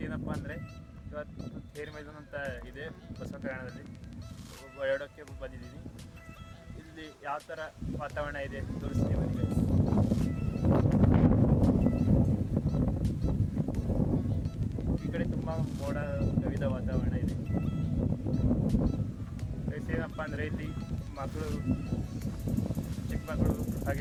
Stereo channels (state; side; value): identical; both; correlation 1.00